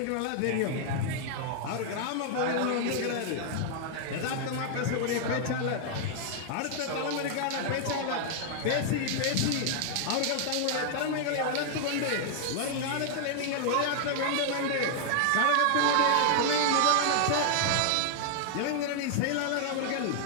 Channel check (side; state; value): both; different; correlation 0.00